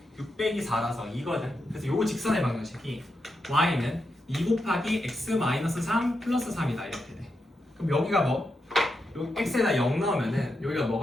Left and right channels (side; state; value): both; normal; correlation 0.85